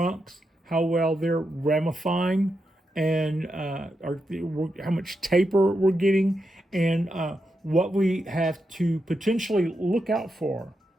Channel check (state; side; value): normal; both; correlation 0.85